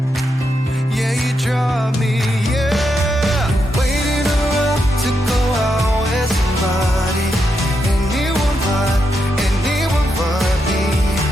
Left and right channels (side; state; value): both; normal; correlation 0.83